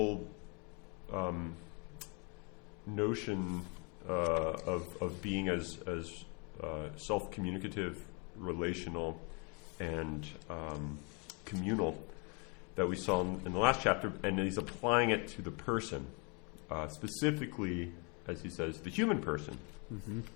notion of being as self-communicative, relational, and communal that we saw in the last chapter, and he's applying it to the person, specifically, as he says, the human person. Mm-hmm.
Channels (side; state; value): right; quieter; 33.9 dB